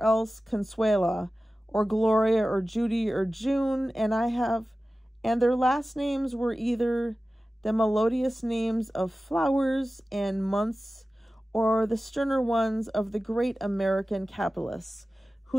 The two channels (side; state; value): both; normal; correlation 0.95